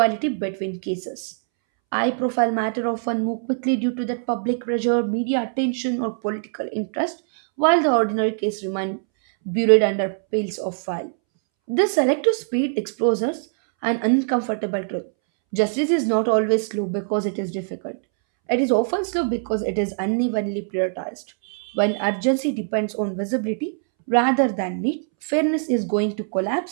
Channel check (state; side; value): silent; left; 64 dB below the other